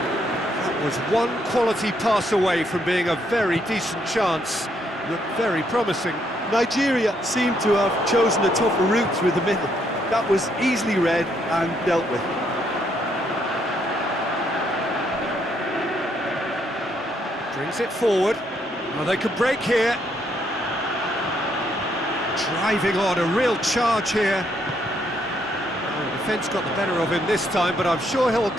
was one quality pass away from being a very decent chance. Looked very promising. Nigeria seemed to have chosen a tougher route through the middle. That was easily read and dealt with. Brings it forward. Well, they could break here. Driving on, a real charge here. The defence got the better of him this time, but I'm sure he'll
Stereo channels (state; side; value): normal; both; correlation 0.73